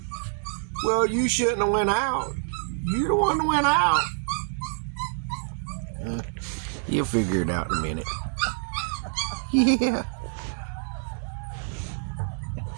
Well, you shouldn't have went out. You the one that went out. You'll figure it out in a minute. Yeah.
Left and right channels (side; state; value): left; silent; 60 dB below the other